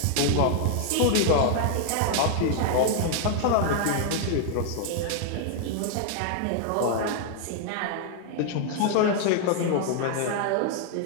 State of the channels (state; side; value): different; both; correlation 0.00